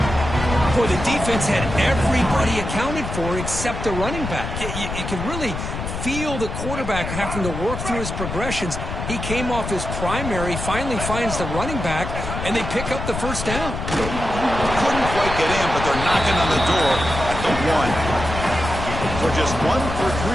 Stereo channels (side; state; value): left; noise; rumble, 6 dB below the sound